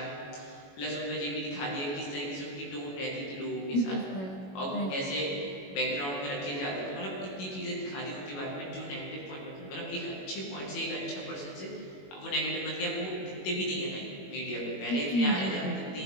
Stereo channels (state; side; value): late; right; 21 ms